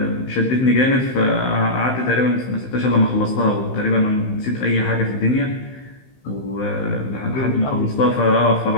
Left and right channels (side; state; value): right; late; 15 ms